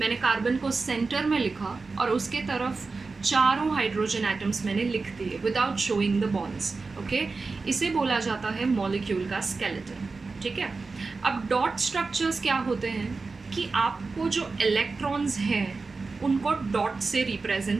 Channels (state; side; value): quieter; left; 4.1 dB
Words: कार्बन को सेंटर में लिखा और उसके तरफ 4 हाइड्रोजन एटम्स मैंने लिख दिए without showing the bonds. Okay, इसे बोला जाता है मॉलिक्यूल का स्केलेटन. ठीक है, अब डॉट स्ट्रक्चर्स क्या होते हैं कि आपको जो इलेक्ट्रॉन्स हैं उनको डॉट से